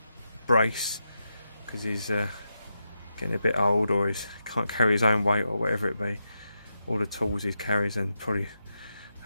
brace because he's getting a bit old, or he can't carry his own weight or whatever it be. All the tools he carries, and probably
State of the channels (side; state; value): both; inverted; correlation -0.86